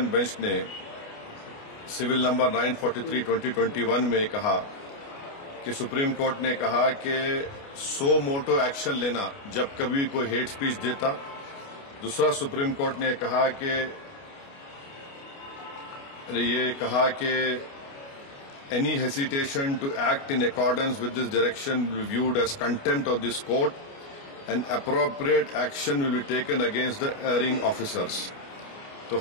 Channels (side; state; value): right; late; 29 ms